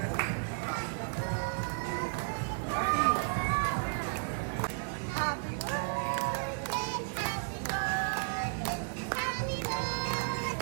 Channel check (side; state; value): left; silent; 55 dB below the other